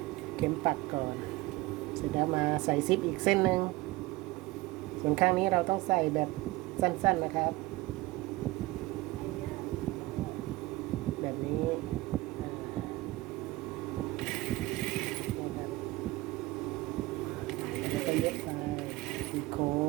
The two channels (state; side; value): quieter; left; 20.0 dB